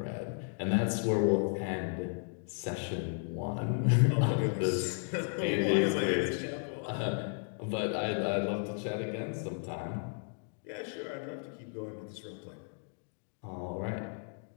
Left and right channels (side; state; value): right; silent; 55 dB below the other